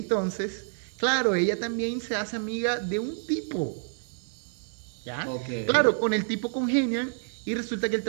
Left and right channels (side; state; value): left; silent; 59 dB below the other